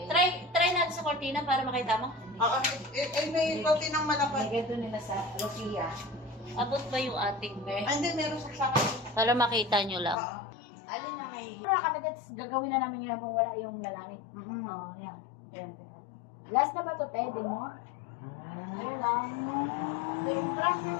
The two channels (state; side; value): drops out; right; at 10.2 s